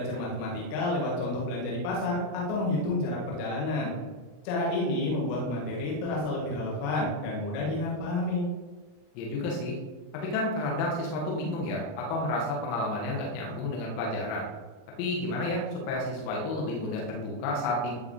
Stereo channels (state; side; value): late; right; 40 ms